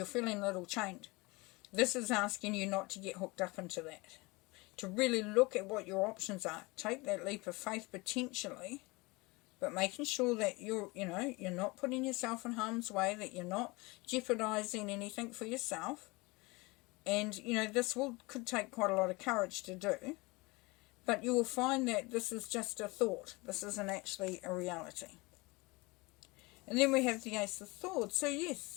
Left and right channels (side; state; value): right; quieter; 24.6 dB